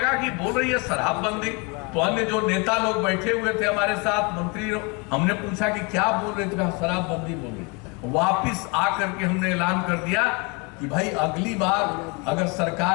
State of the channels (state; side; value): quieter; right; 30.5 dB